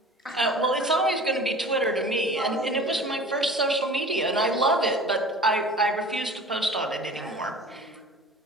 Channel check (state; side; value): normal; both; correlation 0.41